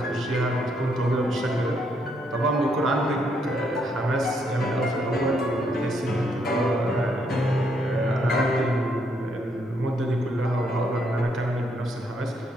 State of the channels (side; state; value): both; normal; correlation 0.74